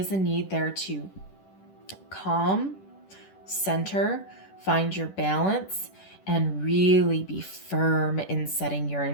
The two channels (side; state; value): right; late; 10 ms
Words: a need there to calm, center, find your balance, and really be firm in setting your